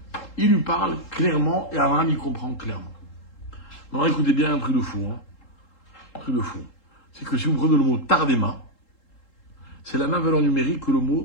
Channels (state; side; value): late; right; 3.7 ms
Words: il lui parle clairement, et Abraham, il comprend clairement. Alors, écoutez bien un truc de fou. Hein. Un truc de fou. C'est que si vous prenez le mot Tardema, c'est la même valeur numérique que le